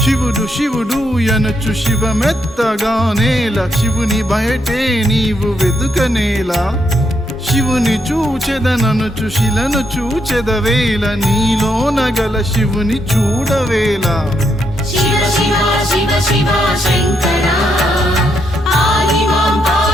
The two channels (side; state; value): both; normal; correlation 0.78